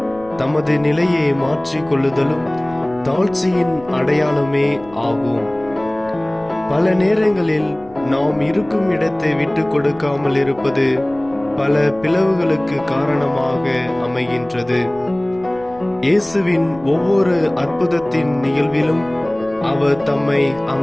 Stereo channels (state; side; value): noise; left; rumble, 24 dB below the sound